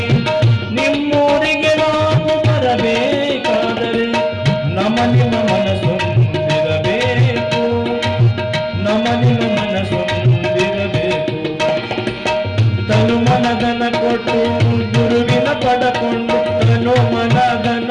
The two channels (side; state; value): both; identical; correlation 1.00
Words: ನಿಮ್ಮೂರಿಗೆ ನಾವು ಬರಬೇಕಾದರೆ, ನಮ್ಮ ನಿಮ್ಮ ಮನಸ್ಸೊಂದಿರಬೇಕು, ನಮ್ಮ ನಿಮ್ಮ ಮನಸ್ಸೊಂದಿರಬೇಕು. ತನು ಮನಧನ ಕೊಟ್ಟು ಗುರುವಿನ ಪಡಕೊಂಡು, ತನು ಮನಧನ